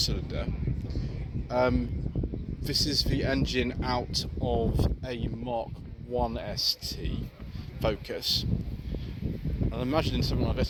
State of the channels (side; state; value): both; identical; correlation 1.00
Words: This is the engine out of a Mark 1 ST Focus. And I'm imagining something like